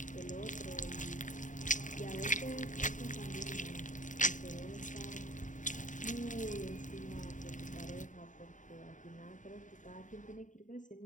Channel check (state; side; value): late; right; 0.37 ms